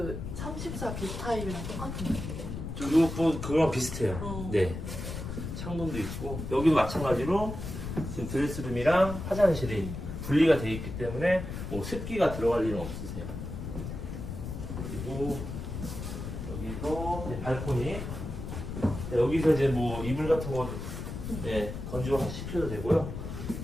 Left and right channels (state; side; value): noise; left; rumble, 7 dB below the sound